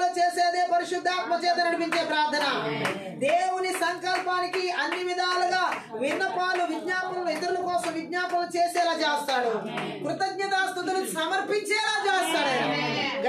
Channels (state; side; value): identical; both; correlation 1.00